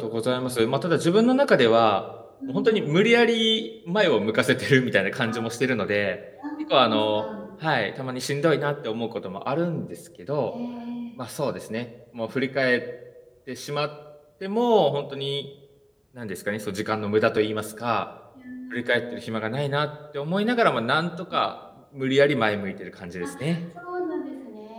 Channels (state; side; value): identical; both; correlation 1.00